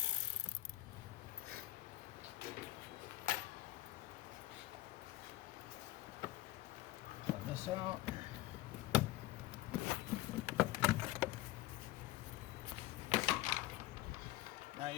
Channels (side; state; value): right; quieter; 16.0 dB